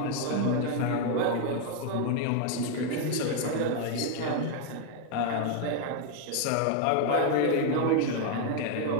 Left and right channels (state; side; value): different; both; correlation 0.01